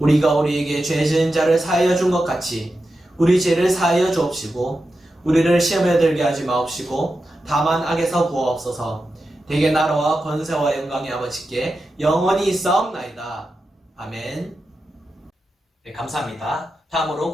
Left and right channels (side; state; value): both; normal; correlation 0.90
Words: 우리에게 죄 지은 자를 사하여 준 것 같이 우리 죄를 사하여 주옵시고 우리를 시험에 들게 하지 마옵시고 다만 악에서 구하옵소서. 대개 나라와 권세와 영광의 아버지께 영원히 있사옵나이다. 아멘. 네, 감사합니다. 다음으로